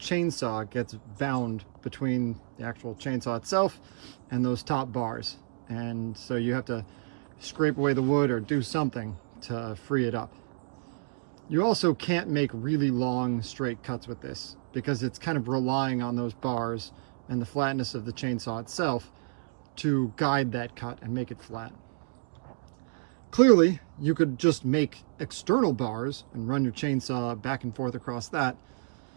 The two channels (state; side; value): silent; left; digital silence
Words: gets bound between the actual chainsaw itself and those top bars. And so you have to scrape away the wood or do something to free it up. You also can't make really long straight cuts with this because it's kind of relying on those bars and the flatness of the chainsaw itself to guide that cut and make it flat. Clearly, you could just make external bars and run your chainsaw back and forth across that,